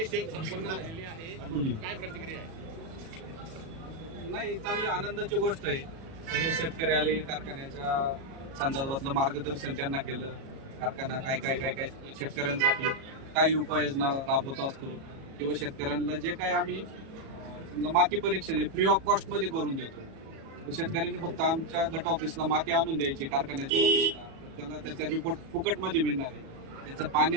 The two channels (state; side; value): late; left; 37 ms